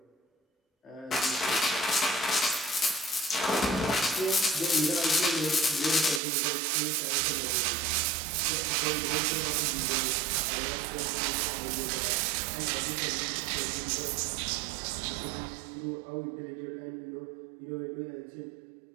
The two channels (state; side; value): drops out; left; at 6.2 s